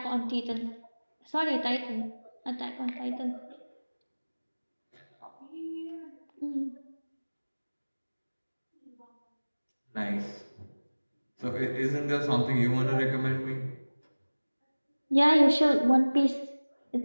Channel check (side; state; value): both; inverted; correlation -1.00